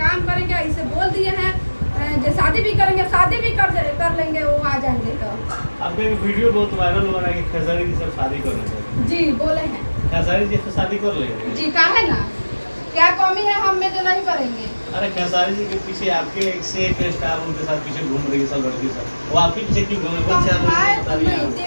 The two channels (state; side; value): inverted; both; correlation -1.00